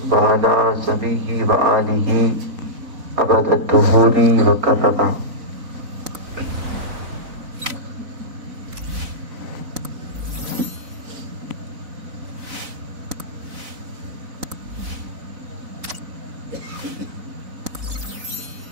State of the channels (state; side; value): late; left; 4.0 ms